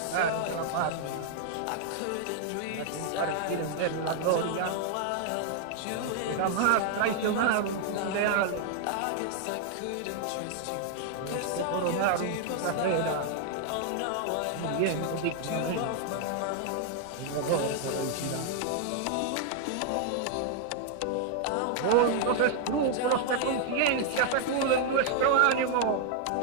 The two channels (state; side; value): different; both; correlation 0.00